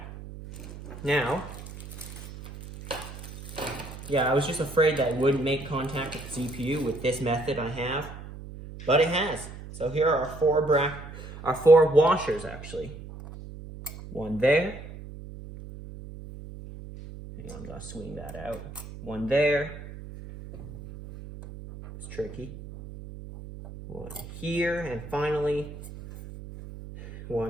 Now, yeah, I was just afraid that it wouldn't make contact with the CPU with this method I have, but it has. So here are our 4 washers, actually. One there. Hang on, I'm gonna swing that out. One there. It's tricky. One here, and finally,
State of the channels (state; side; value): noise; right; hum, 13 dB below the sound